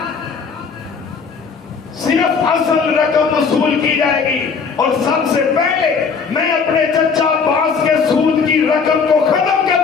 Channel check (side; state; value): right; quieter; 5.5 dB